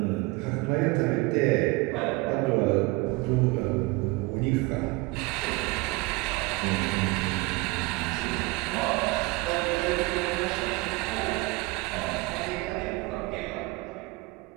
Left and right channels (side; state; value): left; quieter; 23.6 dB